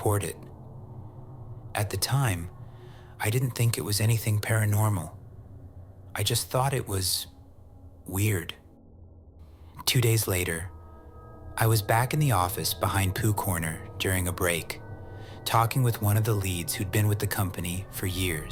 it. At the time, I didn't think it was anything paranormal. I just thought it was weird. 2 days later, I was back in the office behind Pooh Corner during a break, talking with one of the leads who'd been with the company for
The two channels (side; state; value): both; identical; correlation 1.00